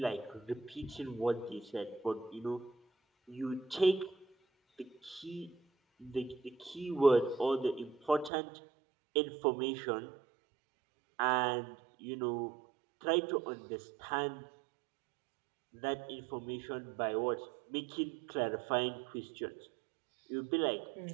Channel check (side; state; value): left; drops out; at 8.3 s